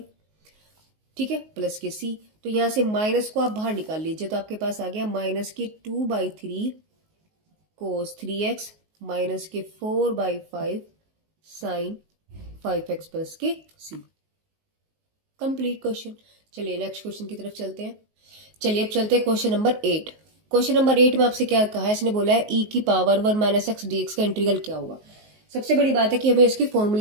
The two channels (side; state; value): left; late; 19 ms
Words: ठीक है, प्लस के c। तो यहां से माइनस को आप बाहर निकाल लीजिए, तो आपके पास आ गया माइनस के 2/3 कोस 3x माइनस के 4/5 साइन 5x प्लस के c। Complete question. चलिए नेक्स्ट क्वेश्चन की तरफ चलते हैं। चलिए अब चलते हैं क्वेश्चन नंबर 8। क्वेश्चन नंबर 8 में आपसे क्या कहा है, इसने बोला है e की पावर 1 - x dx का इंटीग्रल क्या हुआ। सबसे बड़ी बात है कि हमें इसकी